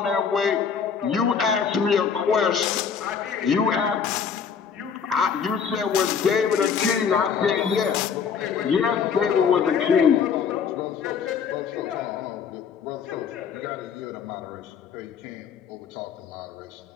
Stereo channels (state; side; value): quieter; right; 6.7 dB